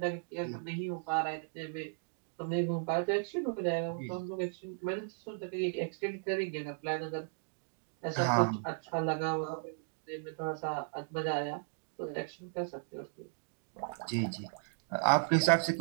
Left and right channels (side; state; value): left; silent; digital silence